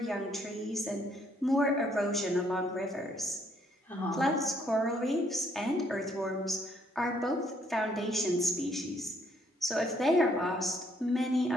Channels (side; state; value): both; normal; correlation 0.68